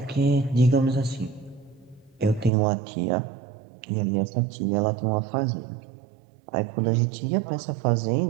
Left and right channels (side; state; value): left; drops out; at 2.5 s